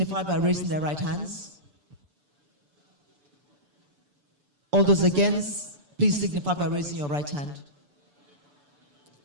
by raising their right hands? All those against, please signify by raising your right hand.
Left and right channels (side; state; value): left; late; 6.9 ms